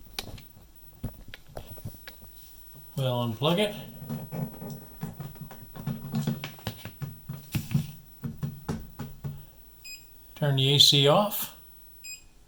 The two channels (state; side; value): identical; both; correlation 1.00